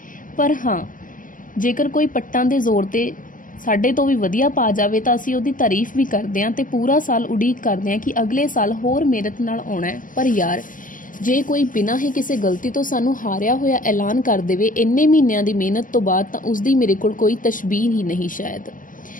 ਪਰ ਹਾਂ, ਜੇਕਰ ਕੋਈ ਪੱਟਾਂ ਦੇ ਜ਼ੋਰ 'ਤੇ ਸਾਡੇ ਤੋਂ ਵੀ ਵਧੀਆ ਪਾ ਜਾਵੇ ਤਾਂ ਅਸੀਂ ਉਹਦੀ ਤਾਰੀਫ ਵੀ ਕਰਦੇ ਹਾਂ ਅਤੇ ਪੂਰਾ ਸਾਲ ਉਡੀਕ ਕਰਦੇ ਹਾਂ ਕਿ ਅਗਲੇ ਸਾਲ ਹੋਰ ਮਿਹਨਤ ਨਾਲ ਆਉਣਾ ਹੈ। ਪਰ ਯਾਰ, ਜੇ ਕੋਈ ਬਿਨਾਂ ਹੀ ਕਿਸੇ ਗਲਤੀ ਤੋਂ ਸਾਨੂੰ ਹਾਰਿਆ ਹੋਇਆ ਐਲਾਨ ਕਰ ਦੇਵੇ ਇੰਨੇ ਮਹੀਨਿਆਂ ਦੀ ਮਿਹਨਤ ਤੋਂ ਬਾਅਦ, ਤਾਂ ਉਸਦੀ ਮੇਰੇ ਕੋਲ ਕੋਈ ਤਸ਼ਬੀਹ ਹੀ ਨਹੀਂ ਸ਼ਾਇਦ।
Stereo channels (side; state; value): right; late; 0.39 ms